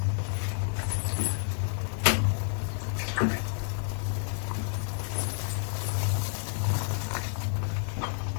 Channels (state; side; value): silent; right; 57 dB below the other